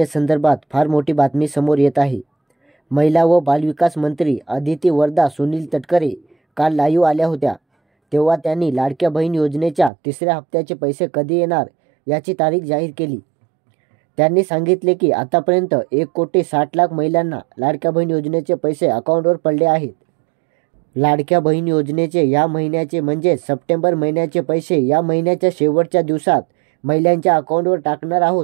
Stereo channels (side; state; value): left; drops out; at 9.9 s